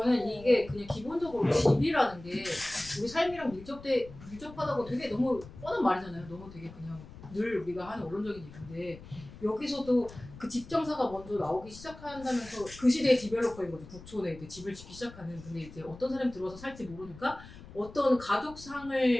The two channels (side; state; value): left; noise; rumble, 17 dB below the sound